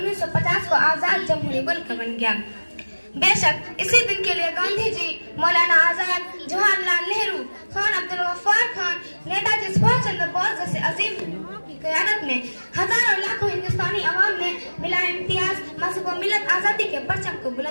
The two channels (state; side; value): inverted; both; correlation -1.00